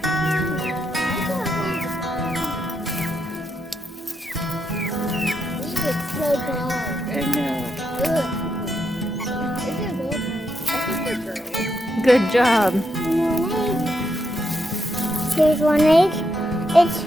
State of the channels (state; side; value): normal; both; correlation 0.81